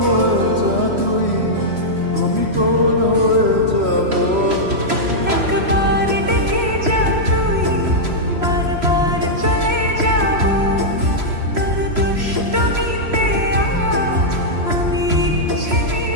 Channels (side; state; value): left; late; 3.0 ms